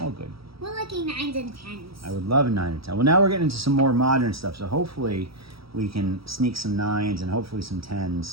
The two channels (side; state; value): left; late; 0.76 ms